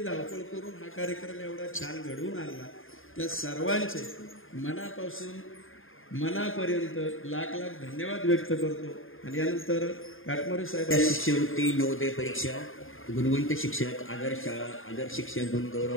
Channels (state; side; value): late; right; 0.59 ms